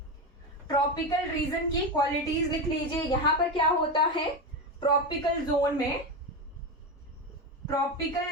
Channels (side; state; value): both; normal; correlation 0.16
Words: ट्रॉपिकल रीजन की क्वालिटीज लिख लीजिए। यहां पर क्या होता है? ट्रॉपिकल जोन